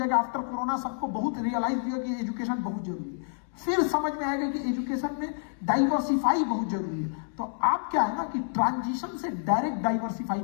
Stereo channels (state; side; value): silent; right; digital silence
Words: आफ्टर कोरोना सबको बहुत रियलाइज होगा कि एजुकेशन बहुत जरूरी है। फिर समझ में आएगा कि एजुकेशन में डाइवर्सिफाई बहुत जरूरी है। तो आप क्या है ना कि ट्रांजिशन से डायरेक्ट डाइवर्सिफाई